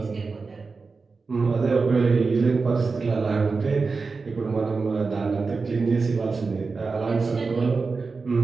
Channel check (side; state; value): left; quieter; 4.4 dB